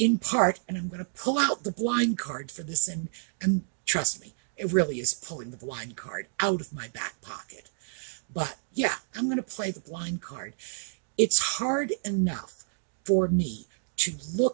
part, and I'm going to pull out the blind card for this, and trust me, it really is pulling the blind card out of my back pocket. But yeah, I'm going to play the blind card. It's hard enough for me to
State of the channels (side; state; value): left; silent; digital silence